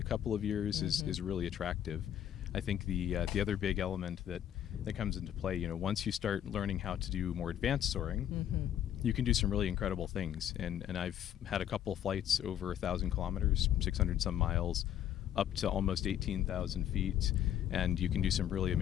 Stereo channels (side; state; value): right; quieter; 10.5 dB